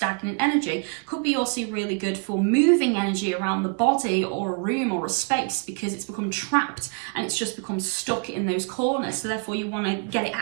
energy. Could be also really good for moving energy around the body or a room or a space, because it's become trapped and it's just become stuck in those corners. So therefore you want to get it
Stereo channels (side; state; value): left; quieter; 37.7 dB